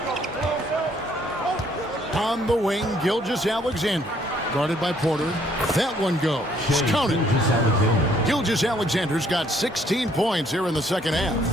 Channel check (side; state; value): both; normal; correlation 0.65